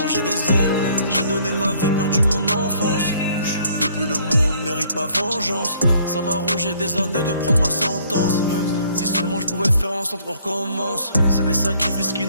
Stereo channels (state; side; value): inverted; both; correlation -0.62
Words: j'ai des ailes. J'ai donné ma vie, perdu mon enfance. Depuis le monde mérite ma vengeance. Ça m'a rongé des années de prendre ma sentence. Si seulement je pouvais faire en sorte qu'on recommence. C'est des sacrifices qui